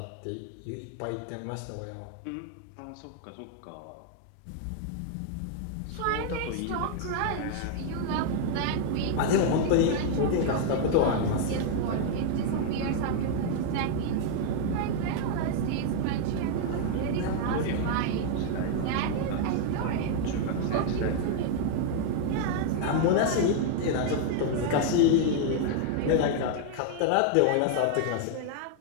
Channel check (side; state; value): both; different; correlation 0.00